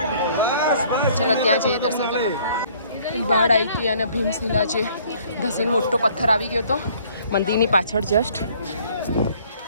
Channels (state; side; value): inverted; both; correlation -0.59